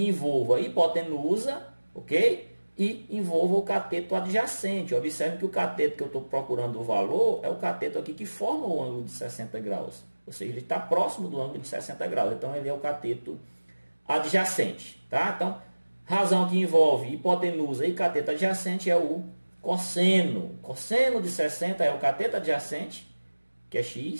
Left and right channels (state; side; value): inverted; both; correlation -1.00